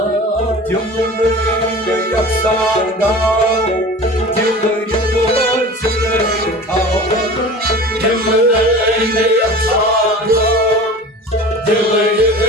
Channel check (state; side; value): normal; both; correlation 0.38